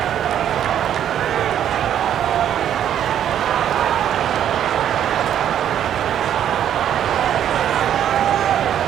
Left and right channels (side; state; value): left; quieter; 10.1 dB